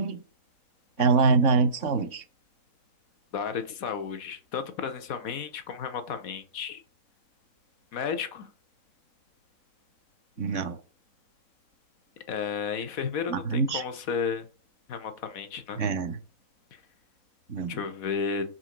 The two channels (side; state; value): right; late; 4.1 ms